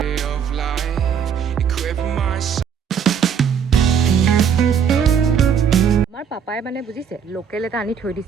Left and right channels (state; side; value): quieter; left; 7.5 dB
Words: আমাৰ পাপাই মানে বুজিছে লোকেল এটা আনি থৈ